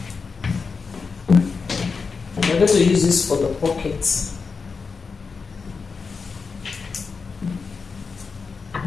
We're going to use this for the pockets.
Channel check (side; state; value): right; quieter; 5.0 dB